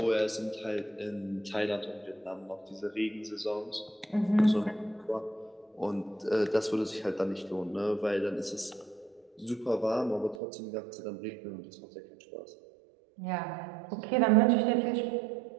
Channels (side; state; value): left; drops out; at 10.4 s